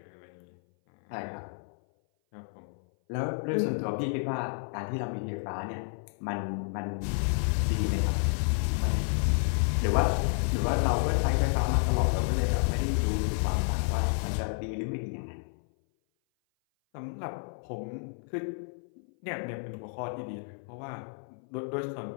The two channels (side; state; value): right; silent; 56 dB below the other